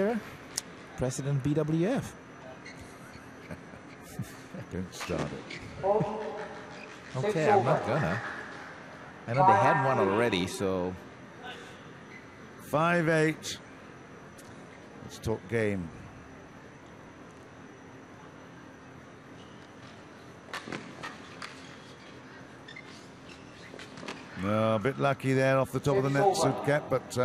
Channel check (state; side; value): identical; both; correlation 1.00